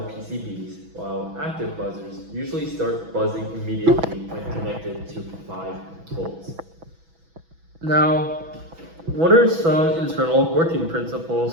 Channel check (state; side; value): late; left; 6.1 ms